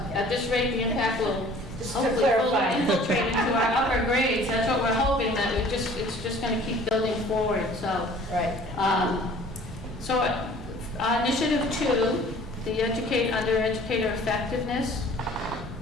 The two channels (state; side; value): normal; both; correlation 0.50